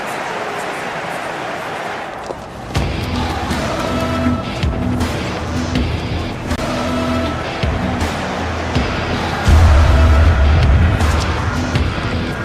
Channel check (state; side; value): identical; both; correlation 1.00